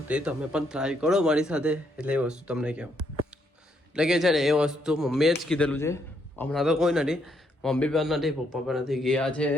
તે તમે પણ ટ્રાય કરો મારી સાથે. એટલે એ વસ્તુ તમને કહેવું એટલે કે છે ને એ વસ્તુ મમ્મીએ જ કીધેલું છે. હમણાં તો કોઈ નથી, મમ્મી પણ નથી, પપ્પા પણ નથી. ગયા છે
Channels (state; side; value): normal; both; correlation 0.74